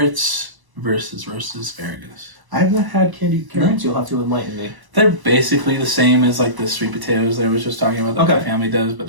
versus roasted asparagus. I have not had candied carrots. No? You'll have to enlighten me. They're basically the same as like the sweet potatoes that I was just talking about that my family does, but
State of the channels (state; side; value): late; left; 1.0 ms